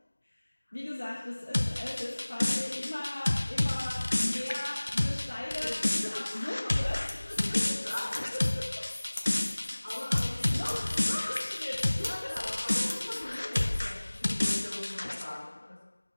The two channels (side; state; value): both; inverted; correlation -1.00